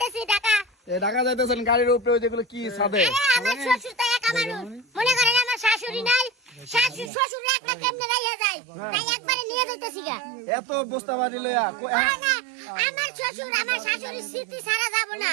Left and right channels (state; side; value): drops out; left; at 7.1 s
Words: ঢাকা। ঢাকা যাইতেছেন গাড়ির উপরে ওই যেগুলো কি ছাদে? আমার শ্বশুর তো একা মানুষ, মনে করেন আমার শাশুড়ি নাই, শাশুড়ি শ্বশুর একটা কেমনে রাইয়া যায়, তাই একবারে নিয়ে যাইতেছি গা। এত বস্তা বাড়ি লইয়া না, আমার শ্বশুর আমার শাশুড়ির স্মৃতি ছাড়া যাব না।